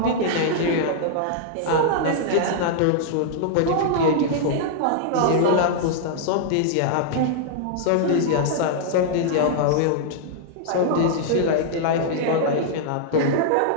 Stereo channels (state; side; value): different; both; correlation -0.01